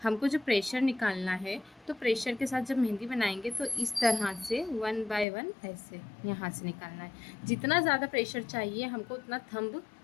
हमको जो प्रेशर निकालना है, तो प्रेशर के साथ जब मेहंदी बनाएंगे तो इस तरह से 1 बाय 1 ऐसे यहाँ से निकालना है। जितना ज़्यादा प्रेशर चाहिए हमको उतना थंब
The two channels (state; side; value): drops out; right; at 5.2 s